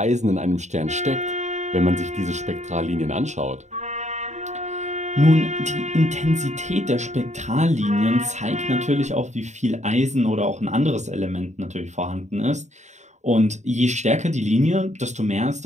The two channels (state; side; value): late; left; 0.34 ms